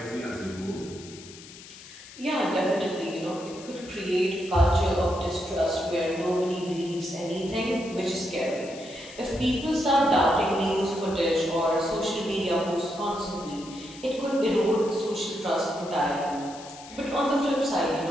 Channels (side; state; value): left; noise; hiss, 17 dB below the sound